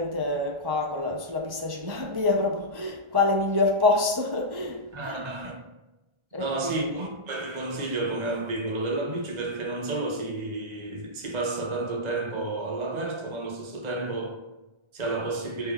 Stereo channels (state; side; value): late; left; 1.3 ms